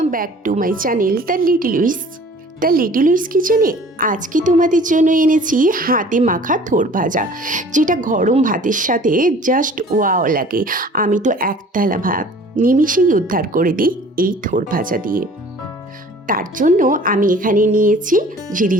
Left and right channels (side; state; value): both; normal; correlation 0.49